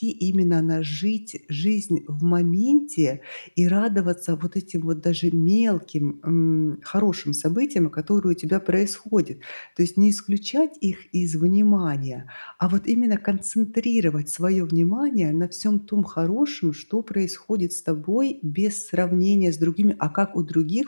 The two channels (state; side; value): inverted; both; correlation -1.00